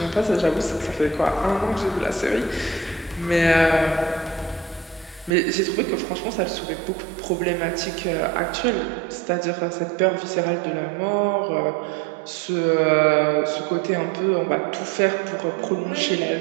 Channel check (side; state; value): left; drops out; at 5.3 s